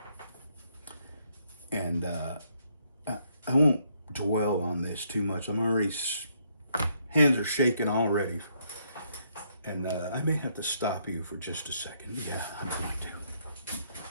and I won't dwell on this too much. I'm already, hands are shaking already. And I may have to stop you for just a second. Yeah, I'm going to.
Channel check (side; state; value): both; inverted; correlation -0.72